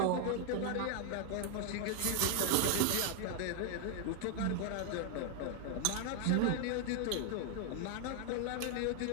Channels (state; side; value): different; both; correlation 0.00